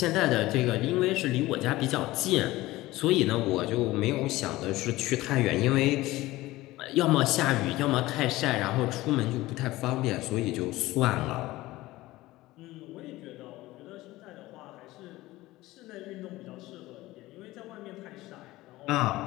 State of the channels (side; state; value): right; quieter; 18.1 dB